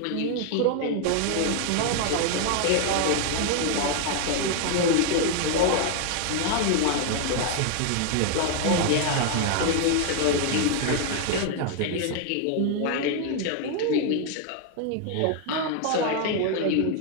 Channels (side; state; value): both; different; correlation 0.00